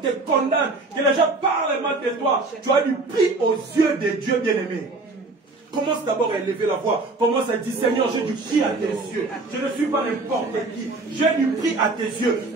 te condamnent, que les gens parlent mal de toi. Tu as du prix aux yeux de Dieu, bien-aimé. Commence d'abord à élever la voix. Commence à dire, Seigneur, j'ai du prix à tes yeux. Je ne suis pas n'importe qui. J'ai du prix à tes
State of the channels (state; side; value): quieter; left; 3.4 dB